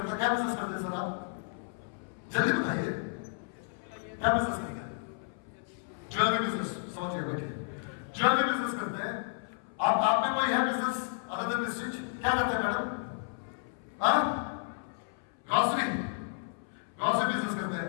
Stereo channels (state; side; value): silent; right; 56 dB below the other